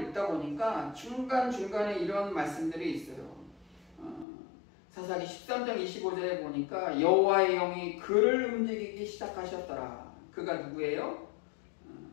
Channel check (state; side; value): drops out; right; at 4.2 s